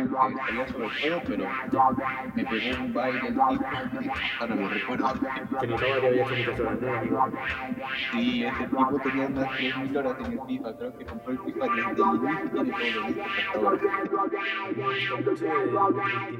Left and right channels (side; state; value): both; identical; correlation 1.00